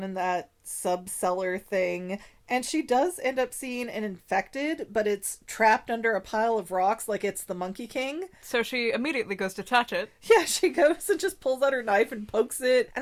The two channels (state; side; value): identical; both; correlation 1.00